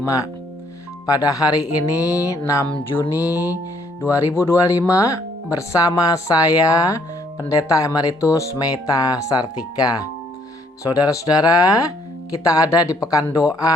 Pada hari ini 6 Juni 2025 bersama saya Pendeta Emeritus Meta Sartika. Saudara-saudara, kita ada di pekan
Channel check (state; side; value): normal; both; correlation 0.66